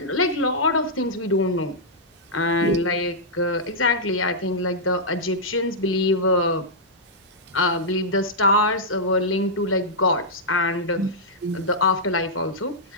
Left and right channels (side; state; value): both; normal; correlation -0.10